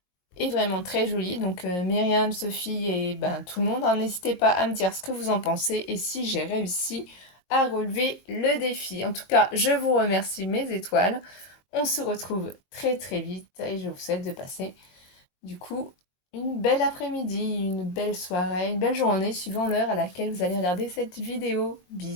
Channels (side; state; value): right; late; 22 ms